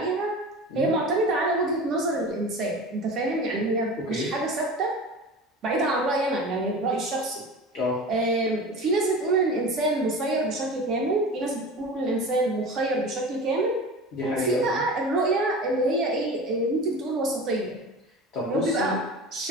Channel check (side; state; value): both; normal; correlation 0.33